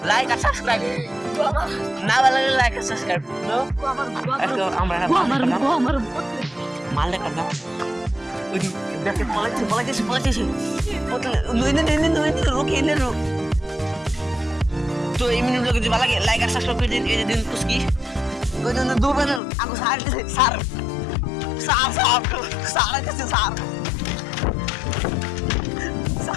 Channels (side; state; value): right; drops out; at 19.4 s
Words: লাইক আর সাবস্ক্রাইব না ভালো লাগে লাইক আর সাবস্ক্রাইব আমরা মাল দেখা দাও ওই দেখে পলাইছে রুকি এনে রুক তো এই মিনিট যদি ভালো লাগে লাইক আর সাবস্ক্রাইব করে দিন এই যে দিন পুস্কি ওই জন্য দুবার আগো স্যার